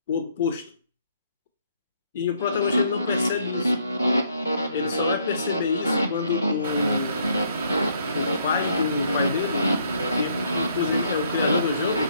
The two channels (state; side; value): inverted; both; correlation -0.68